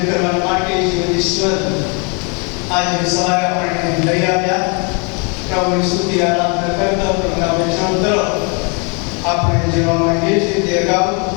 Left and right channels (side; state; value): right; quieter; 34.1 dB